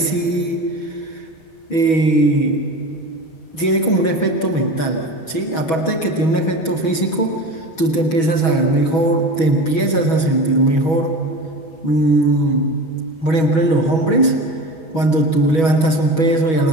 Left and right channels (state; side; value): late; right; 6.2 ms